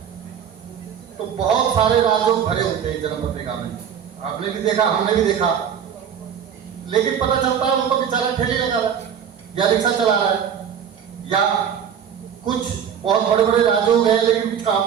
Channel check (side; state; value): left; quieter; 8.3 dB